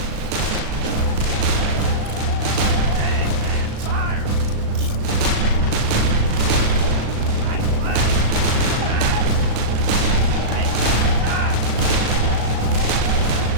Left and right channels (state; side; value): late; left; 36 ms